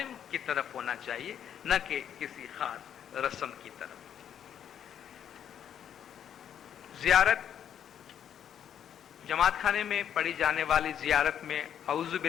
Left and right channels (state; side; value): quieter; right; 9.2 dB